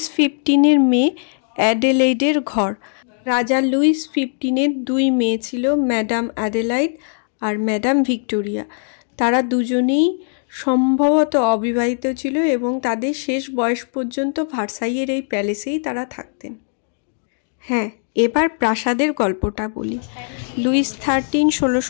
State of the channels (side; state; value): right; silent; digital silence